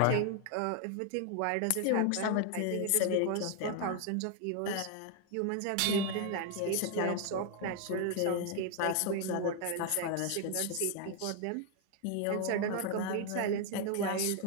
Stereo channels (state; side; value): different; both; correlation 0.00